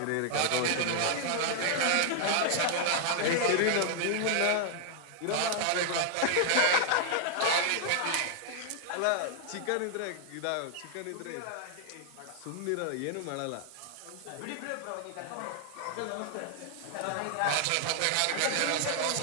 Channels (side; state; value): both; different; correlation 0.00